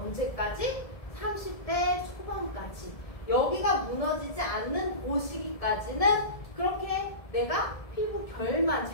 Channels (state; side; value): late; right; 1.7 ms